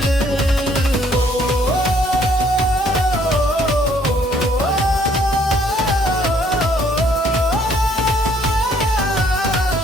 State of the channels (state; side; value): normal; both; correlation 0.64